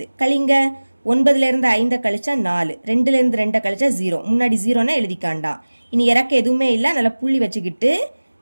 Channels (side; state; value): both; inverted; correlation -1.00